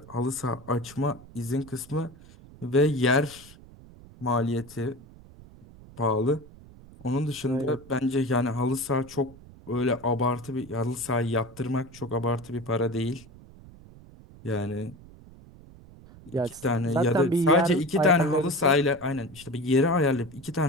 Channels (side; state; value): right; noise; rumble, 21 dB below the sound